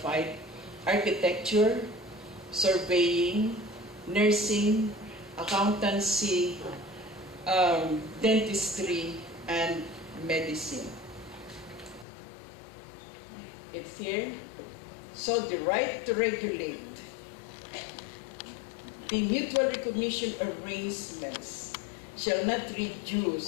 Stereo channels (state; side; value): drops out; right; at 12.1 s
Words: architecture, surveying, nursing, accountancy, dentistry, and medicine. It's here. So the right to regulate. The mutual recognition arrangements shall not